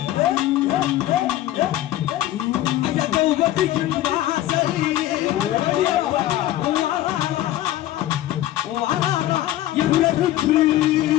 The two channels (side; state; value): right; quieter; 14.1 dB